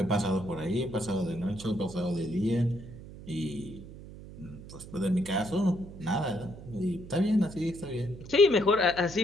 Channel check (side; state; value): right; noise; hum, 15 dB below the sound